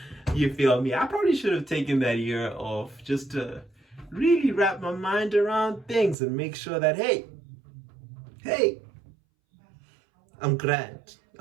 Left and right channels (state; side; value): drops out; left; at 6.2 s